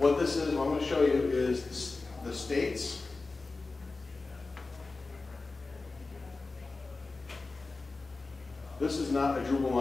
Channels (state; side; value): quieter; right; 3.6 dB